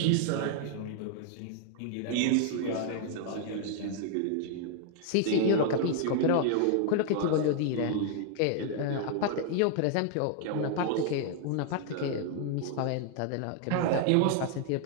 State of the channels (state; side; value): different; both; correlation 0.00